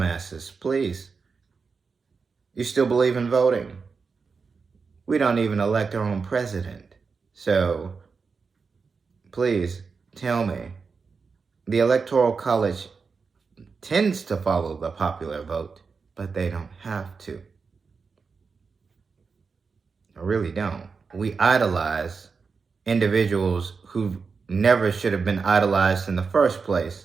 please. You still believe in voting? We don't even elect our own president. So, please tell me, the Electoral College tends to follow the popular vote, but they don't have to. I really don't. We idolize individuals who never should have been idolized in the first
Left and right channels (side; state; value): left; quieter; 5.0 dB